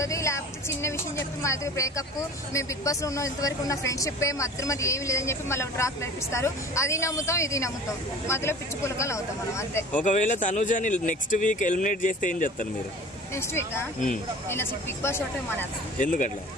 లేకపోతే చిన్న విషయం చెప్పి మా దగ్గర బ్రేకప్, మేము బిగ్ బాస్ లో ఉన్న ఇంతవరకు ఉన్న ఫ్రెండ్షిప్ మధ్య మధ్య ఏమి లేదని చెప్పి మళ్ళీ డ్రాప్ నేర్పిస్తారు. అది నమ్ముతాం, ఇది నమ్ముతాం, మధ్యలో పిచ్చి పులకలు అవుతాం మనం అంతే. ఒకవేళ తనుజని నెక్స్ట్ వీక్ ఎలిమినేట్ చేస్తే ఏం చేస్తారు మీరు? నెక్స్ట్ వీక్ నేను అసలు బిగ్ బాస్ షోటే మానేస్తాను. ఎందుకట్లా?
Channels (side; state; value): both; normal; correlation 0.42